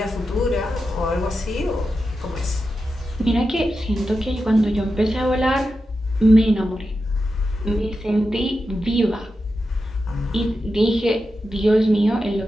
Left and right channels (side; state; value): both; normal; correlation 0.90